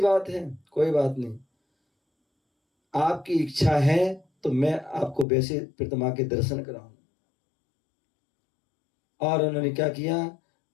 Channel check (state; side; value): drops out; right; at 5.2 s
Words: है, कोई बात नहीं, आपकी इच्छा है तो मैं आपको वैसे प्रतिमा के दर्शन कराऊं। और उन्होंने क्या किया?